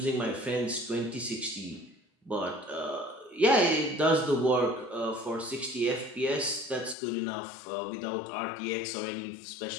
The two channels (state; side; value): drops out; right; at 7.0 s